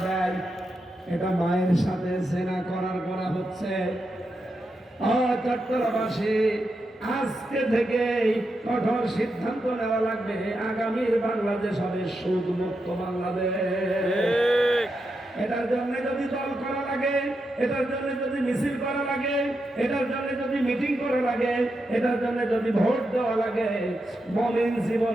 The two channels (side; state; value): both; normal; correlation 0.86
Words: দেয়। এটা মায়ের সাথে জেনা করা হচ্ছে। চট্টগ্রামবাসী, আজকে থেকে কঠোর সিদ্ধান্ত নেওয়া লাগবে, আগামীর বাংলাদেশ হবে সুদ মুক্ত বাংলাদেশ। এটার জন্য যদি দল করা লাগে, এটার জন্য যদি মিছিল করা লাগে, এটার জন্য যদি মিটিং করা লাগে, এটার জন্য যদি ভোট দেওয়া লাগে, মুমিন